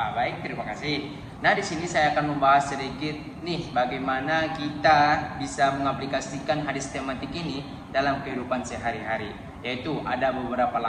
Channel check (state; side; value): identical; both; correlation 1.00